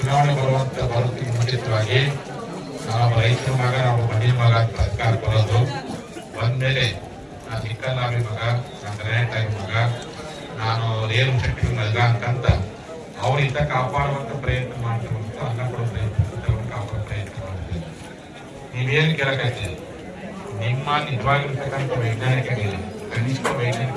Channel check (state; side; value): identical; both; correlation 1.00